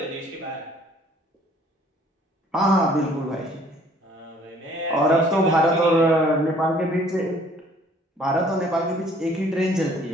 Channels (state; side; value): normal; both; correlation 0.57